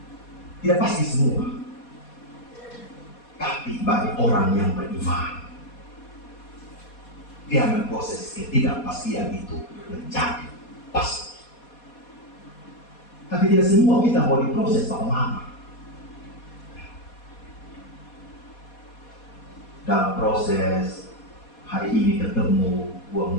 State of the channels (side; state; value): right; late; 4.2 ms